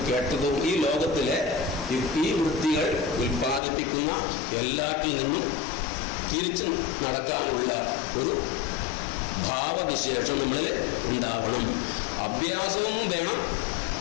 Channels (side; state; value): right; drops out; at 3.6 s